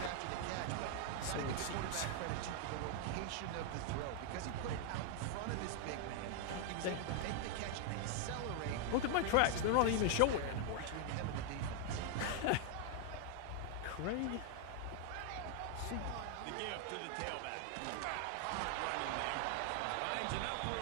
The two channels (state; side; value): different; both; correlation 0.00